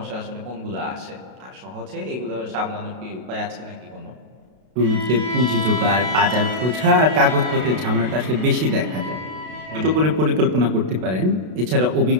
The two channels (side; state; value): left; late; 32 ms